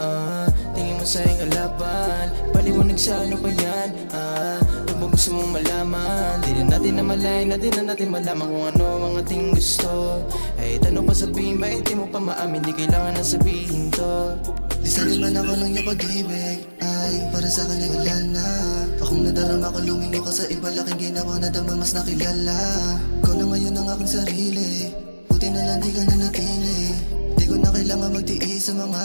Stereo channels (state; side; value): inverted; both; correlation -1.00